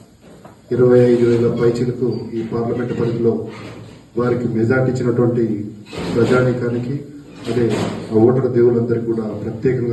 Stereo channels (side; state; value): both; identical; correlation 1.00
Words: పైచీలకు ఈ పార్లమెంటు పరిధిలో వారికి మెజార్టీ ఇచ్చినటువంటి ప్రజానీకానికి, అదే ఆ ఓటర్ దేవులందరికీ కూడా